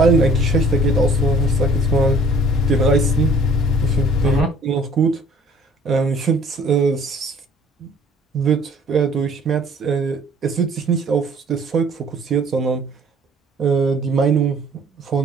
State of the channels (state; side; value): normal; both; correlation 0.54